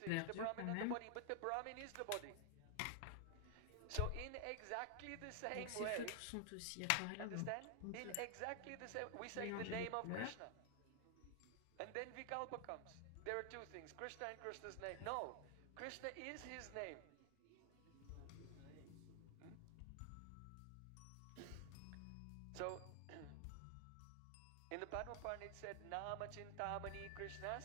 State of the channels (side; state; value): both; different; correlation 0.00